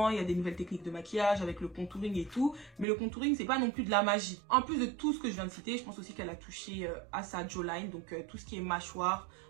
il y a des nouvelles techniques de maquillage avec le contouring et tout. Mais le contouring, c'est pas non plus de la magie. En plus de tout ce que je viens de citer, je pense aussi qu'elle a touché à sa jawline. Donc tout ce qui est mâchoire,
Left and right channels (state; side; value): drops out; left; at 2.9 s